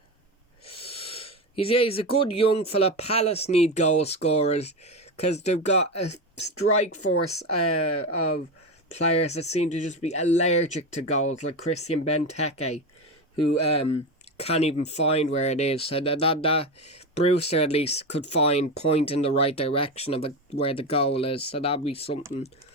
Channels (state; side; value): normal; both; correlation 0.18